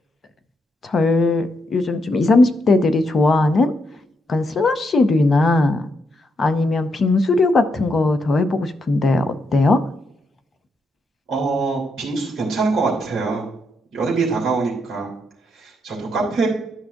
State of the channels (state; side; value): normal; both; correlation 0.80